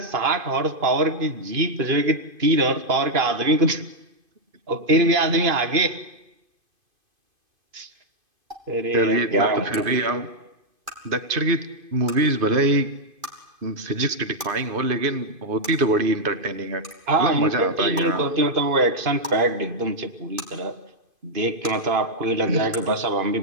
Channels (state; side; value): late; left; 2.5 ms